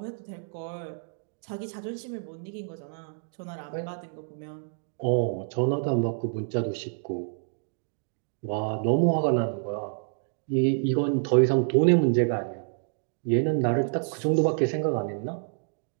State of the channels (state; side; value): silent; left; digital silence